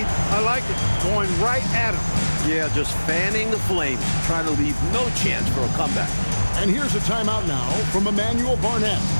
I like it. Going right at him. Yeah, just fanning the flames, trying to leave no chance for a comeback. And here's a timeout now from Emmanuel Barnett.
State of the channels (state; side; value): inverted; both; correlation -1.00